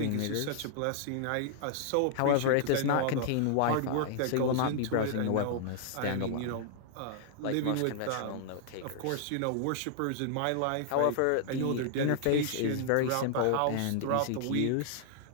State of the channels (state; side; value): different; both; correlation -0.01